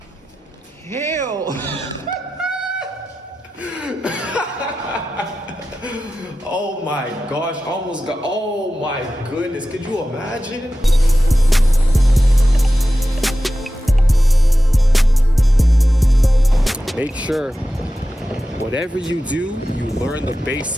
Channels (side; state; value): both; normal; correlation 0.93